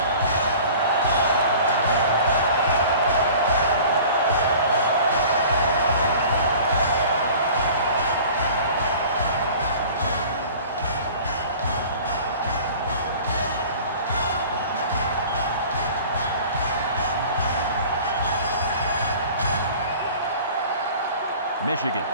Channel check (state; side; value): inverted; both; correlation -0.44